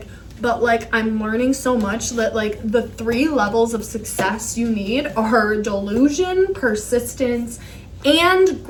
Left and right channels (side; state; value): both; identical; correlation 1.00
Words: but I'm learning so much that the 3 levels of success you need are delusion, persistence, and